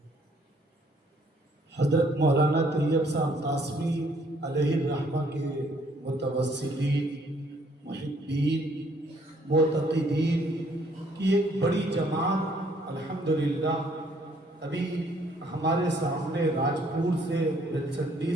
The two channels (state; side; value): normal; both; correlation 0.64